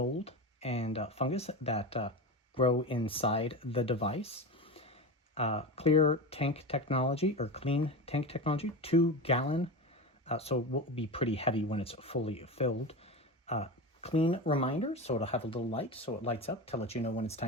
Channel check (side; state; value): both; normal; correlation 0.24